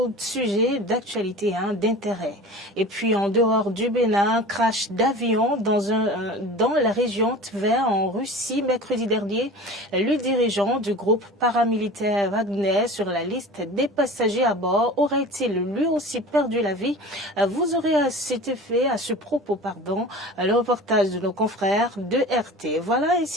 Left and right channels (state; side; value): normal; both; correlation 0.37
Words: de sujets d'actualité, d'intérêt. Et puis en dehors du Bénin, crash d'avion dans la région Tver en Russie mercredi dernier. Le dirigeant du groupe paramilitaire Wagner sur la liste des passagers à bord aurait-il lui aussi perdu la vie? Vous aurez à ce propos, le reportage de nos confrères de RT. Voilà